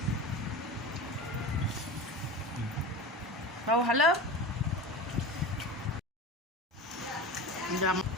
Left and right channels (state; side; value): normal; both; correlation 0.30